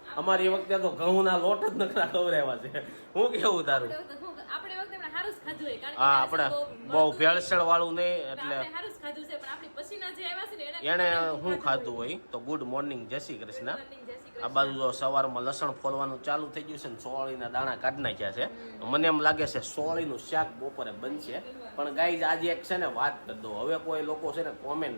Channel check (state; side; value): inverted; both; correlation -1.00